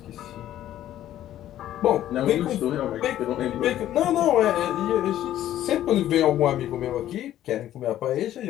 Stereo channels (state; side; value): quieter; right; 12.5 dB